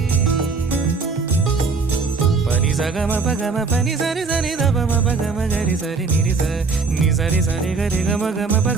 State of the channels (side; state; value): left; quieter; 4.5 dB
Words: पनि सगम पगम पनि सरि सरि दपम पगम गरि सरि निरि स नि सरि सरि गरि गम गम